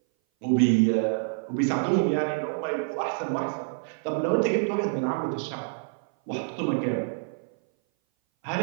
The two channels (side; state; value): left; silent; 58 dB below the other